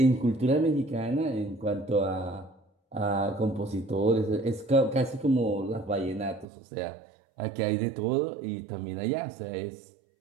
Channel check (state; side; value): drops out; left; at 6.5 s